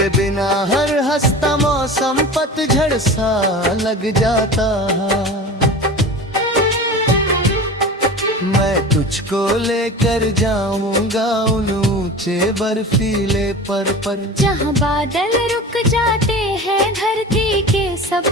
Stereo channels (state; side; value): normal; both; correlation 0.34